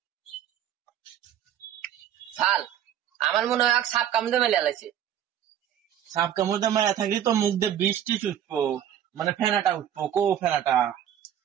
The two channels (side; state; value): left; quieter; 10.3 dB